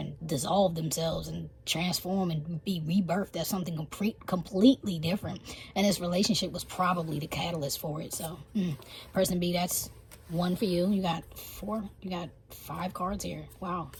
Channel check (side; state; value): both; identical; correlation 1.00